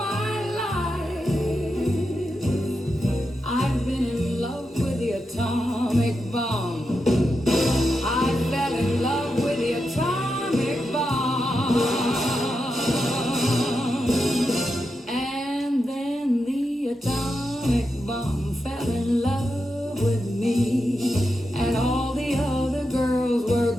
life I've been in love with the atomic bomb. I fell in love with the atomic bomb. And then the atomic bomb fell in love with me. And all the other girls were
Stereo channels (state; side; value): normal; both; correlation 0.87